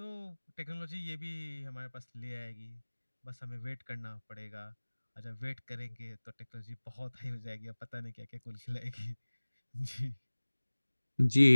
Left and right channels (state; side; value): inverted; both; correlation -1.00